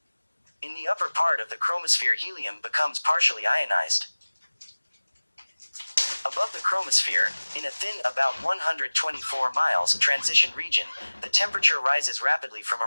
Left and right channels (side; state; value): both; inverted; correlation -1.00